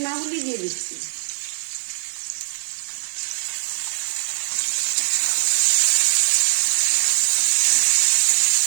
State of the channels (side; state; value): left; silent; 65 dB below the other